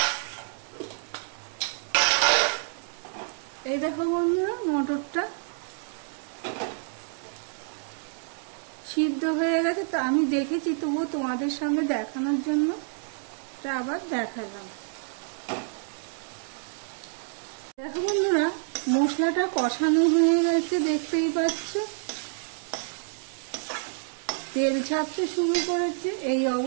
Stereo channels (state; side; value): silent; left; digital silence